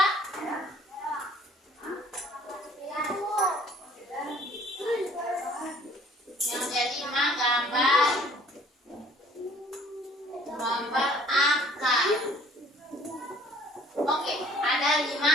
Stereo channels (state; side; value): normal; both; correlation 0.55